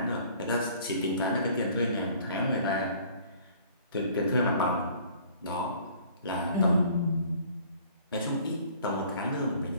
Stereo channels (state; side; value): inverted; both; correlation -0.54